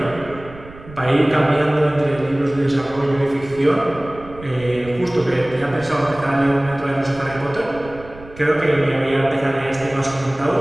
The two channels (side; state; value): right; noise; rumble, 18 dB below the sound